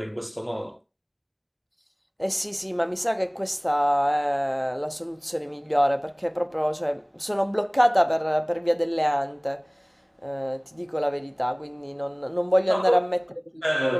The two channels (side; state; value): both; identical; correlation 1.00